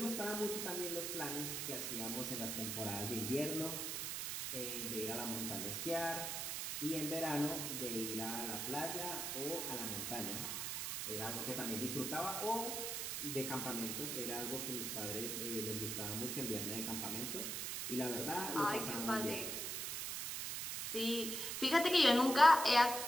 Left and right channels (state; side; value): noise; right; hiss, 2 dB below the sound